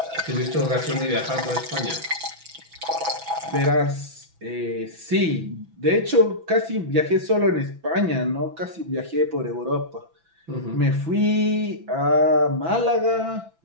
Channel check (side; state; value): left; late; 6.0 ms